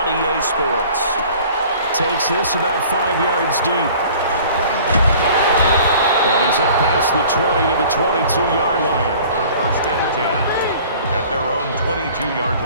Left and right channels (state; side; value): inverted; both; correlation -0.48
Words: EA Sports. Takes this about 5 yards deep. And he's up past the 20 to the 22-yard line. First and 10 at their own 22-yard